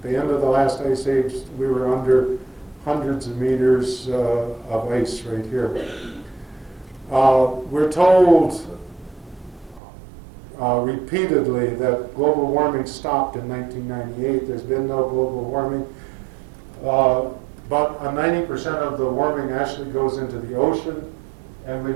At the end of the last ice age, we were under hundreds of meters of ice right here. We're told repeatedly that global warming stopped in 1998. There's been no global warming. But 90% of the warming actually goes into the ocean, and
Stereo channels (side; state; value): left; drops out; at 9.8 s